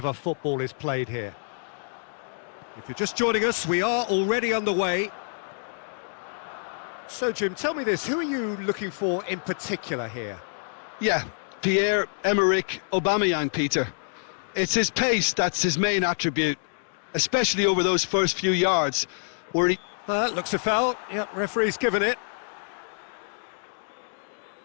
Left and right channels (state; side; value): silent; right; digital silence